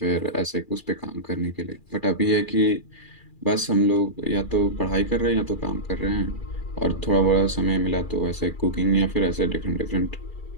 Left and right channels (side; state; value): right; late; 2.4 ms